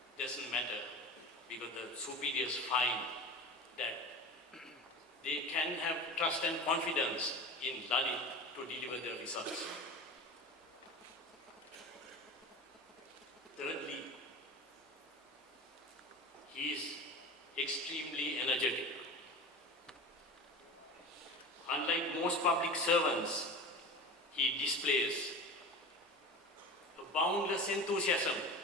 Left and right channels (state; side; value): normal; both; correlation 0.33